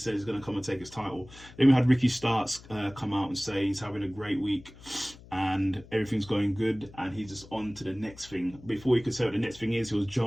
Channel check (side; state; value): left; noise; hum, 20 dB below the sound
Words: he's going to come and take his title. Then we had Ricky Starks come out and say he's having a great week and everything's going good, and he's just on to the next thing. Before he could say what the next thing is, he was